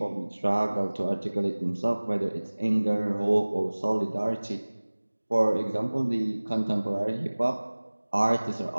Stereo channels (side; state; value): both; inverted; correlation -1.00